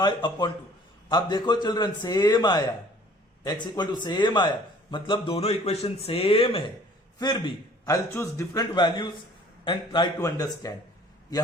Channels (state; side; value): normal; both; correlation 0.53